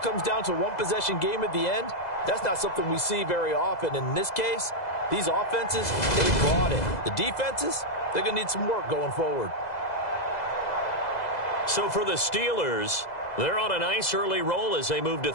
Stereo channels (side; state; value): right; late; 2.0 ms